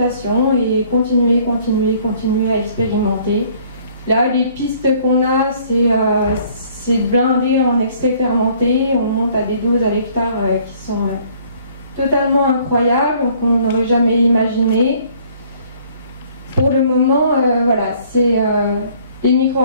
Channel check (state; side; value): inverted; both; correlation -0.59